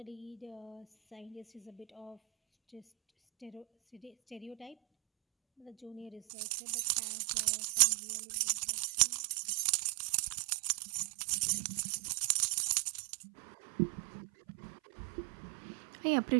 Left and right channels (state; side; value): drops out; left; at 6.2 s